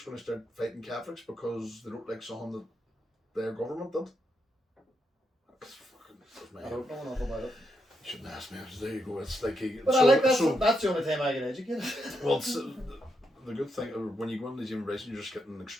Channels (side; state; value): both; normal; correlation 0.81